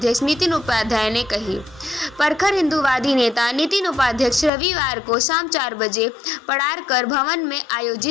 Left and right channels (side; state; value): right; drops out; at 4.5 s